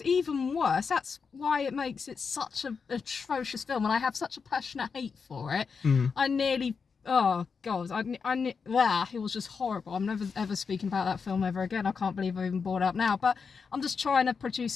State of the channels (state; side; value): quieter; right; 5.5 dB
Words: even worse. That's why it makes it such an atrocious film, and I have such a passionate hate for it. I nearly, oh god, it was just horrible. I'm never ever speaking about that film ever again. I can't believe I even brought it up now, but I'm just trying to